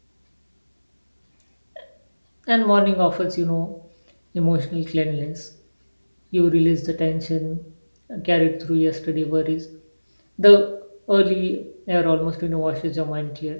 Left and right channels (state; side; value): inverted; both; correlation -1.00